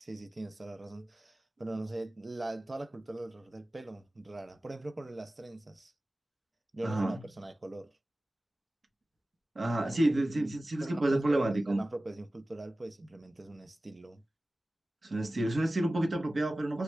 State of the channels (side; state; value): both; normal; correlation 0.96